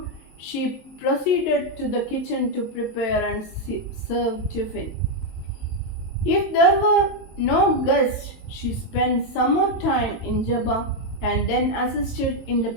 she proceeded to the kitchen to prepare and serve tiffin. If there were no guests, she spent some more time in Jabba and then assisted in the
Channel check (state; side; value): late; right; 22 ms